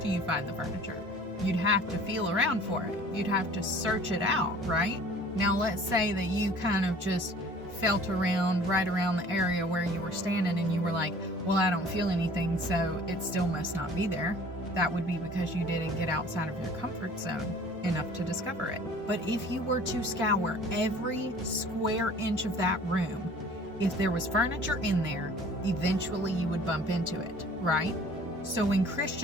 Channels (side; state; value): both; normal; correlation 0.49